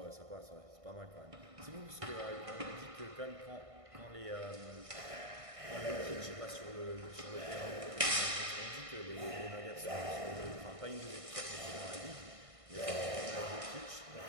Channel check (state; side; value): late; left; 1.6 ms